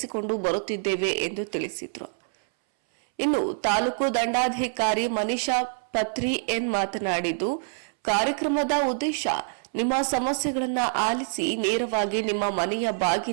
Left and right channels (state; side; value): silent; left; 61 dB below the other